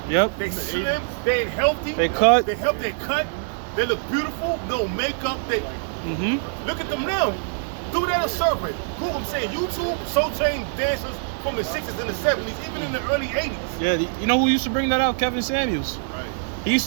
Yep. They slim, they ain't healthy. They cut. They cut. They look beautiful, no makeup. Look at them now. Do that a survey. Google, I'm saying YouTube Soul Train dancers from the 60s and the 70s, even in the early 80s. Yeah, you know who used to bring that out? Kevin Samuels. Right. He used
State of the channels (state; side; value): silent; left; digital silence